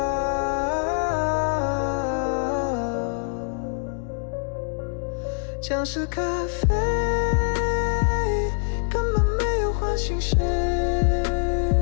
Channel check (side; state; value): right; silent; digital silence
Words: 像是咖啡，根本没有唤醒谁，